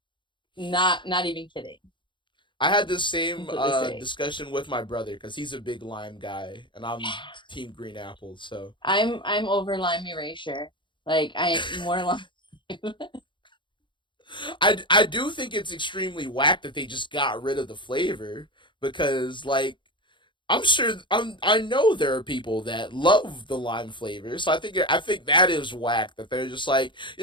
Not even kidding. I had the same Completely safe. discussion with my brother because he's a big lime guy and I'm team green apple. So I'm over lime erasure. Like I more lime. I do think it's extremely whack that they just got rid of the flavor because like I know there are people that love the lime flavor, so I think that is whack that they're just like,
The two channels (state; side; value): late; right; 0.23 ms